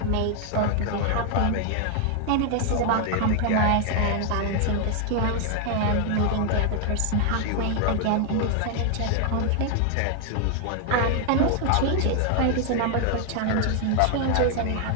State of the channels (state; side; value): different; both; correlation 0.00